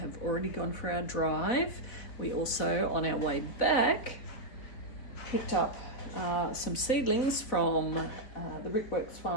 already gone for our drive. We also, on our way back, picked up some seedlings from the Brickworks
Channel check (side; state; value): right; late; 4.2 ms